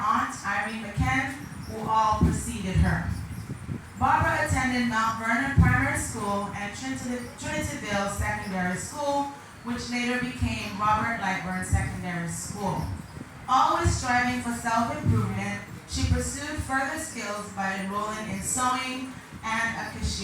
Irene McCann, who all preceded her. Barbara attended Mount Vernon Primary School and Trinityville Secondary School, which later became Robert Lightburn Secondary School. Always striving for self-improvement, she pursued further skills by enrolling in sewing and a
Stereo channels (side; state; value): both; identical; correlation 1.00